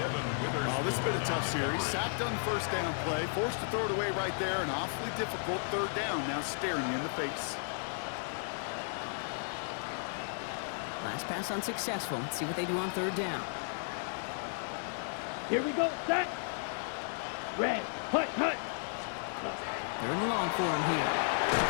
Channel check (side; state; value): right; silent; digital silence